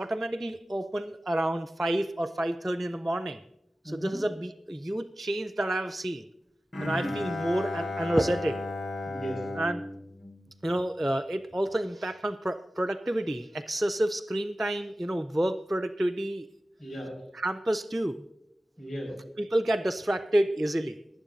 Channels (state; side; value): normal; both; correlation 0.95